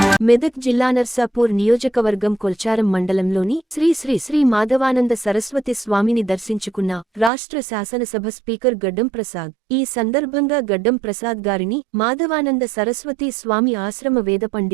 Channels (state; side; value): drops out; left; at 7.3 s